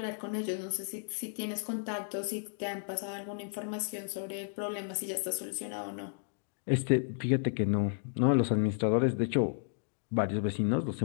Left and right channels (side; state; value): right; silent; digital silence